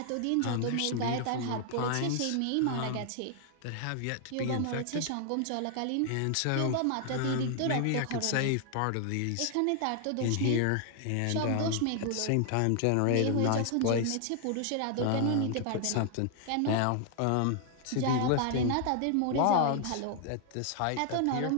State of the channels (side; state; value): both; different; correlation 0.00